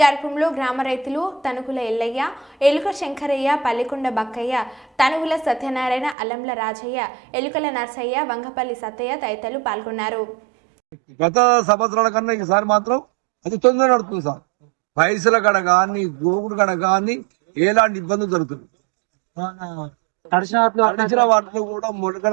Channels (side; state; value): left; drops out; at 6.2 s